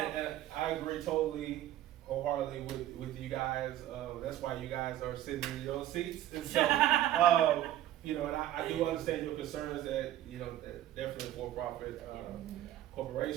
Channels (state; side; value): quieter; left; 13.0 dB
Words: I agree totally, wholeheartedly with you guys. That's why you guys are sitting in your seats. And so, you know, and I do understand your concerns that, you know, that definitely a for-profit